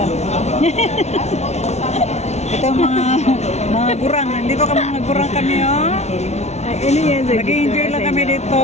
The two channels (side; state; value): right; late; 0.32 ms